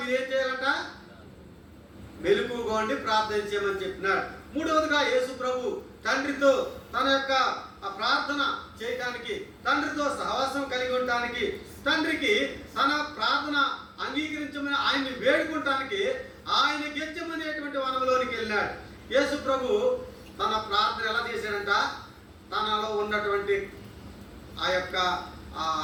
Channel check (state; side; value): identical; both; correlation 1.00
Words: ఏం చేయాలంట? మెలకువగా ఉండి ప్రార్థన చేయమని చెప్పినాడు. మూడవదిగా యేసు ప్రభు తండ్రితో తన యొక్క ప్రార్థన చేయడానికి, తండ్రితో సహవాసం కలిగి ఉండటానికి, తండ్రికి తన ప్రార్థన అంగీకరించమని ఆయన్ని వేడుకుంటానికి ఆయన గెచ్చమనేటువంటి వనంలోనికి వెళ్ళాడు. యేసు ప్రభు తన ప్రార్థన ఎలా చేశాడంట? తనలో ఉన్నటువంటి ఆ యొక్క